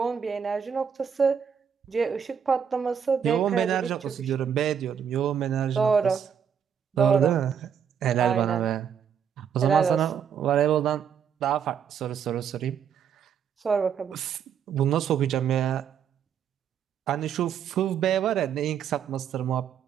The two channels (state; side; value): quieter; left; 7.8 dB